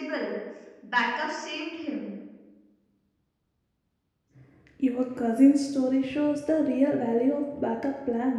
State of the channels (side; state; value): both; identical; correlation 1.00